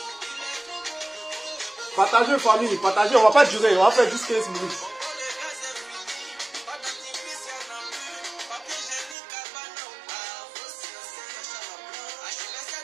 Partagez, famille, partagez. On va pas durer. On va faire juste 15 minutes.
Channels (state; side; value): drops out; left; at 9.2 s